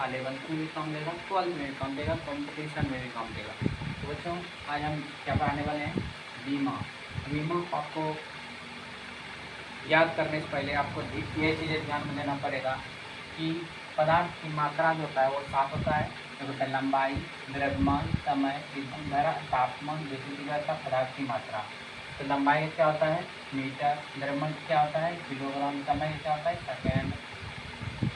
11th में भी काम देगा, 12th में भी काम देगा, कंपटीशन में भी काम देगा। तो बच्चों, आज हम क्या पढ़ाने वाले हैं? बीमा। बीमा आपको याद करने से पहले आपको ये चीज़ें ध्यान में देना पड़ेगा कि पदार्थ की मात्रा जो होता है वो 7 होता है। जो होता है लंबाई, द्रव्यमान, समय, ईंधन धारा, तापमान, विद्युत तीव्रता, पदार्थ की मात्रा। तो लंबाई क्या होता है? मीटर। द्रव्यमान क्या होता है? किलोग्राम। समय क्या होता है? सेकेंड।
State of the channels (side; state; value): both; identical; correlation 1.00